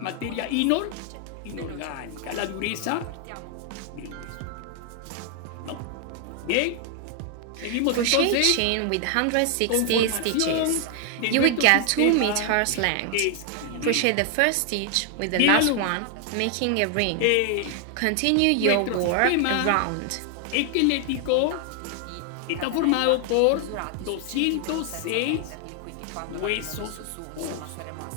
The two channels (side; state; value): both; different; correlation 0.00